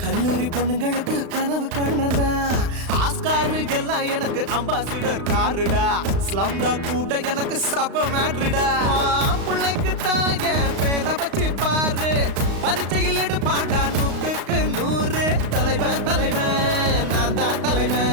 கல்லூரி பொண்ணுங்களுக்கு கனவு கண்ணனா Oscar எல்லாம் எனக்கு ambassador காருடா ஸ்லம்டா கூட எனக்கு சப்ப மேட்ருடா பிள்ளைக்கு தான் என் பேரை வச்சு பாரு பரிச்சையில் எடுப்பாண்டா 100க்கு 100 தலைவன் தலைவன் நான் தான்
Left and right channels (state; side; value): late; left; 35 ms